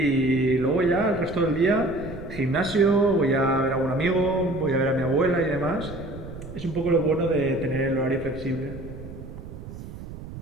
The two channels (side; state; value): right; noise; rumble, 12 dB below the sound